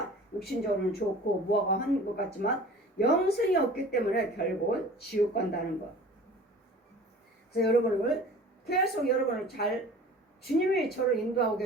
육신적으로는 좋고 무화과 하는 것 같지만 영성이 없기 때문에 결국은 지옥 간다는 것. 그래서 여러분을 계속 여러분을 잘 주님이 저를 인도하고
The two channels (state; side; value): normal; both; correlation 0.43